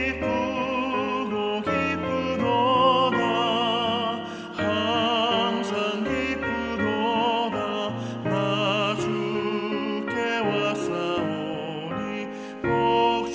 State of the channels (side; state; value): both; identical; correlation 1.00